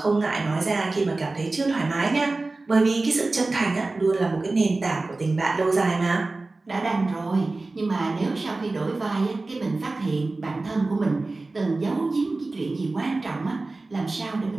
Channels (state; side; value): quieter; left; 3.3 dB